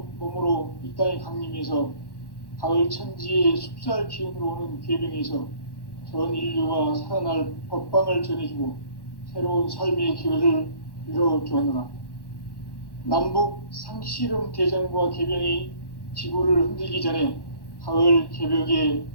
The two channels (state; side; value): late; right; 1.1 ms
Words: 몸으로 이 땅에 강림해서 가을 천지의 숲살 기운으로 오는 계명에서 전 인류가 살아날 법방을 전해주고 새로운 삶의 기회를 이뤄주었노라. 남북 상씨름 대전과 개병이 지구를 흔들기 전에 가을 개벽의